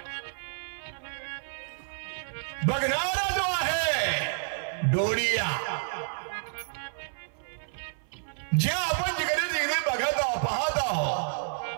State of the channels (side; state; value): left; silent; 58 dB below the other